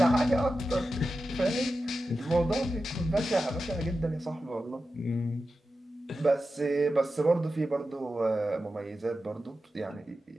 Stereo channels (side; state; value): both; normal; correlation 0.92